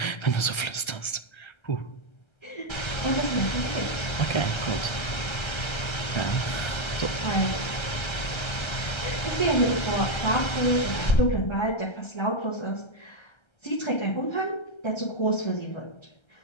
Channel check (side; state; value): right; late; 1.3 ms